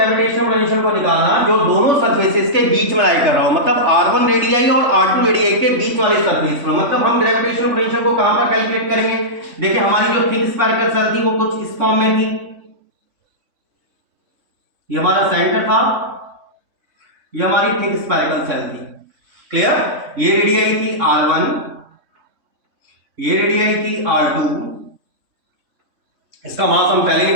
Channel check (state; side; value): late; left; 3.5 ms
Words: पोटेंशियल को निकालना जो दोनों सरफेसेस के बीच में लाई कर रहा हो, मतलब r1 रेडियाई और r2 रेडियाई के बीच वाले सरफेस पर। मतलब हम ग्रेविटेशनल पोटेंशियल को कहां पर कैलकुलेट करेंगे, देखिए हमारी जो थिक स्फेरिकल सेल थी वो कुछ इस फॉर्म में थी, ये हमारा सेंटर था, ये हमारी थिक स्फेरिकल सेल थी, क्लियर। ये रेडियाई थी r1, ये रेडियाई थी r2, इसका मास हम पहले